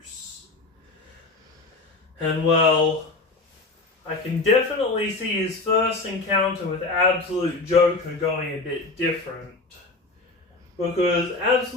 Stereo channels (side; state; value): right; quieter; 3.4 dB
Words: And well, I can definitely see his first encounter with Absolute Joker going a bit different. Because